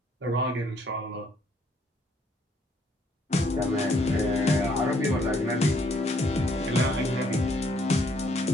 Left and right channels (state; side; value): normal; both; correlation 0.67